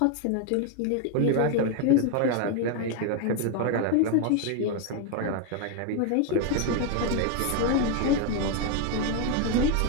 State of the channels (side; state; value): both; different; correlation 0.01